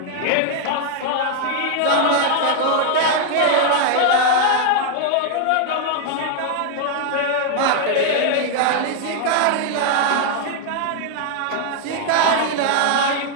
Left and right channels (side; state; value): both; different; correlation 0.00